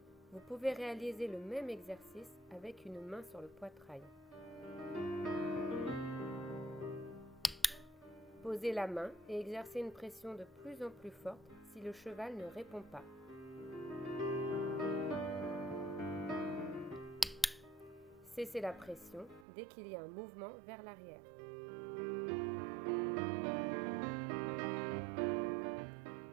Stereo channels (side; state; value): left; drops out; at 19.5 s